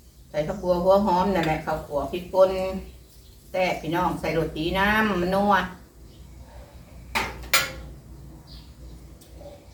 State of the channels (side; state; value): both; identical; correlation 1.00